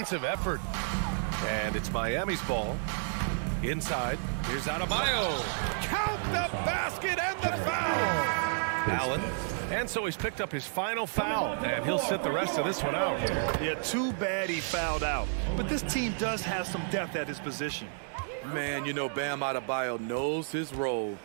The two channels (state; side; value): silent; left; 57 dB below the other